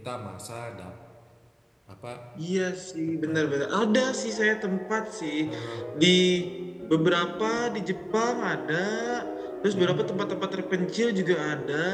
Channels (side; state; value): both; identical; correlation 1.00